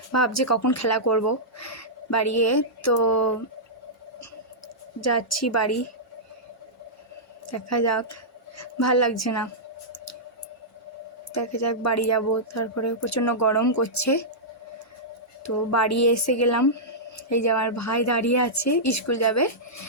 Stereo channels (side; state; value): both; normal; correlation -0.13